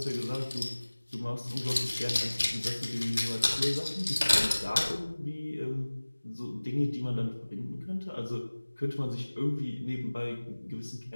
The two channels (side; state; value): both; inverted; correlation -1.00